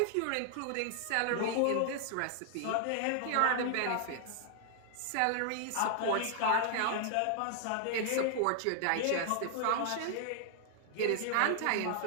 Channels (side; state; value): both; different; correlation 0.00